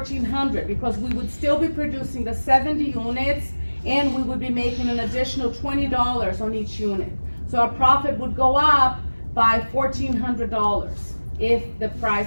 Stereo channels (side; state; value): both; inverted; correlation -1.00